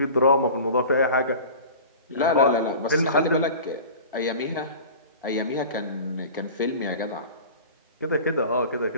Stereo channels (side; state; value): both; inverted; correlation -0.38